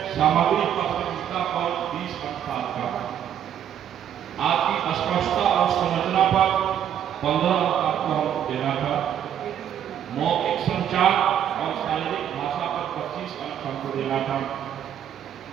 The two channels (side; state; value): left; quieter; 9.7 dB